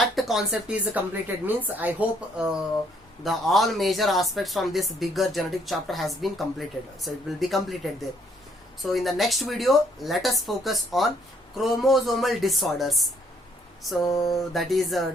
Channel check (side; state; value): both; normal; correlation 0.67